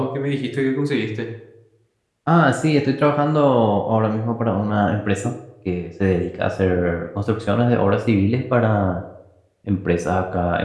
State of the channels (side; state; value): both; identical; correlation 1.00